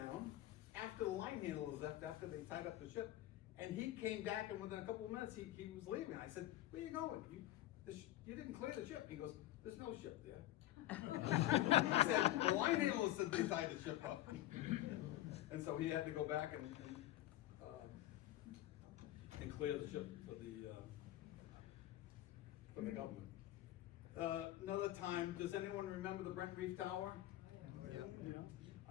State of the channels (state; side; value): quieter; right; 14.8 dB